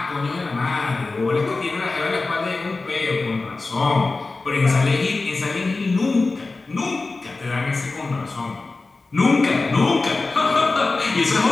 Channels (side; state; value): right; quieter; 3.6 dB